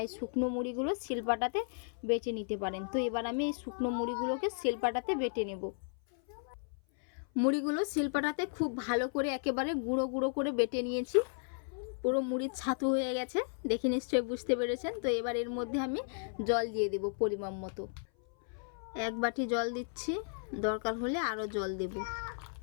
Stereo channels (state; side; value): silent; right; 55 dB below the other